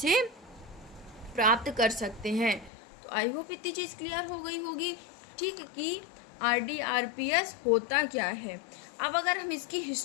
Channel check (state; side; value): drops out; right; at 2.7 s